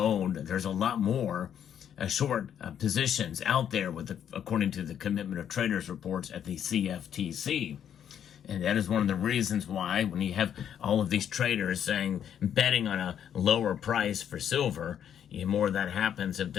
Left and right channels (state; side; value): quieter; right; 9.3 dB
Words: there's a lot more short positions out there, according to the Commitment of Traders reports at the CFTC. And that is one of the reasons why, when you have all of these traders betting on a lower price for silver, the more that happens, it